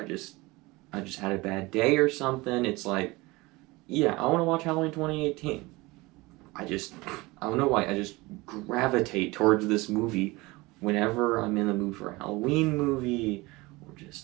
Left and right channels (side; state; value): left; quieter; 22.4 dB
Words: just had a bad day or something, it's like, yeah, I want to watch Halloween 2018. I don't know why, I just gravitate towards this movie whenever I'm in the mood for a Halloween movie, or